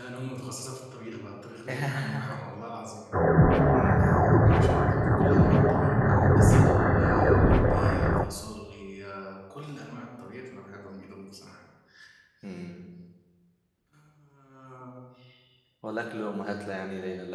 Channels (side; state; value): both; identical; correlation 1.00